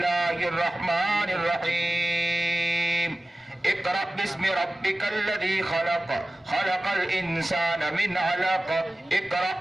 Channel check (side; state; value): both; normal; correlation 0.96